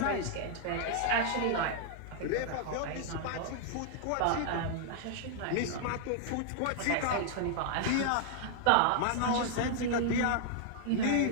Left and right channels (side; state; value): both; different; correlation -0.01